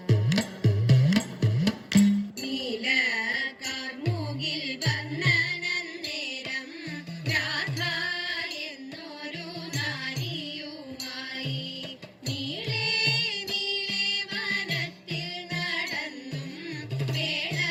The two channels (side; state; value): both; identical; correlation 1.00